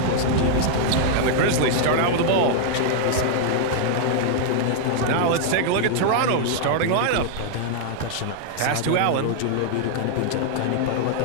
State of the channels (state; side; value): different; both; correlation -0.01